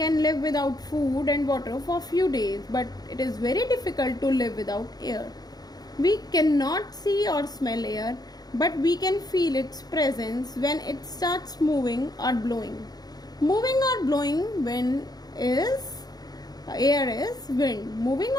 live without food and water for a few days, but it is very difficult to live without air. We cannot see or smell air, but we can feel its presence when it starts moving or blowing. Moving or blowing wind is air is wind. Moving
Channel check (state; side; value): late; right; 0.19 ms